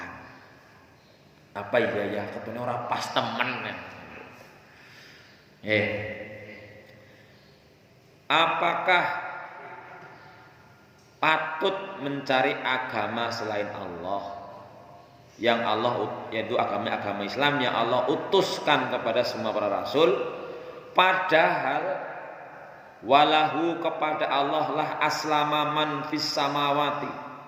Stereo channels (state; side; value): identical; both; correlation 1.00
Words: apa ya ketune ora pas temen ya. Apakah patut mencari agama selain Allah yang Allah yaitu agama Islam yang Allah utuskan kepada semua para rasul, padahal walahu kepada Allah lah aslama man fis samawati,